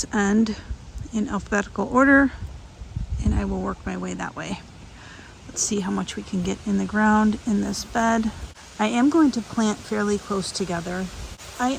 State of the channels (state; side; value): identical; both; correlation 1.00